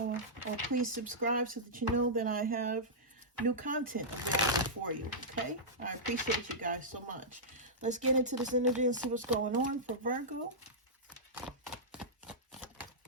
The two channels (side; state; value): both; normal; correlation -0.12